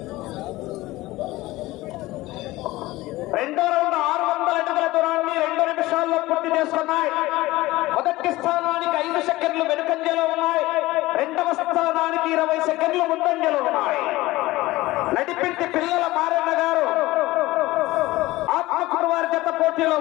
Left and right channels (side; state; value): right; quieter; 18.7 dB